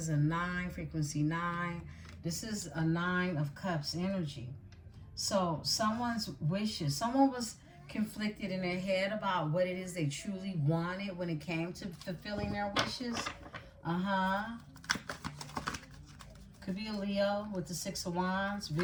a 9, frequency 9. This is a 9 of Cups energy. So someone's wishes, someone was conflicted in their head about what it is they truly wanted when it came to fulfilling their wishes. Could be a Leo with the 6 of Wands.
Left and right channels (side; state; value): both; identical; correlation 1.00